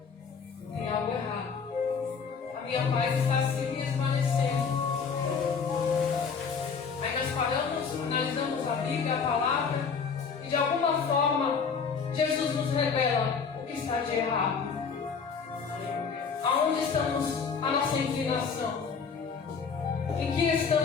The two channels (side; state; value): right; quieter; 5.8 dB